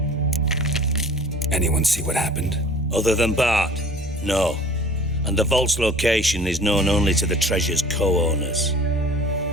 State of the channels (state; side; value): normal; both; correlation 0.46